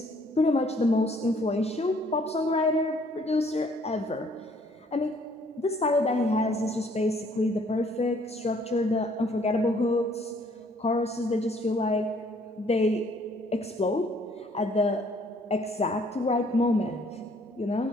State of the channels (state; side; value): normal; both; correlation 0.62